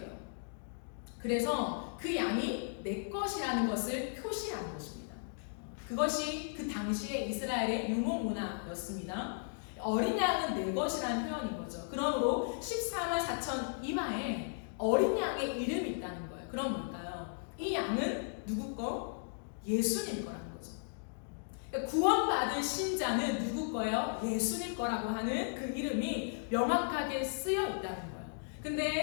그래서 그 양이 내 것이라는 것을 표시하는 것입니다. 그것이 그 당시의 이스라엘의 유목 문화였습니다. 어린 양은 내 것이라는 표현인 거죠. 그러므로 14만 4천 이마에 어린 양의 이름이 있다는 거예요. 그럼 뭘까요? 이 양은 누구 거? 예수님 거라는 거죠. 그러니까 구원받은 신자는 누구 거예요? 예수님 거라고 하는 그 이름이 명확하게 쓰여 있다는 거예요.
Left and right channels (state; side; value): silent; right; digital silence